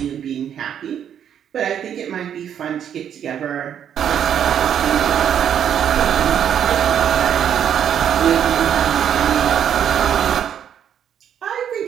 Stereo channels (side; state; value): left; quieter; 9.1 dB